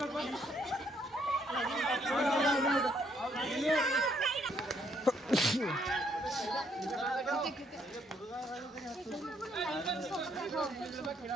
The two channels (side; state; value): both; normal; correlation 0.70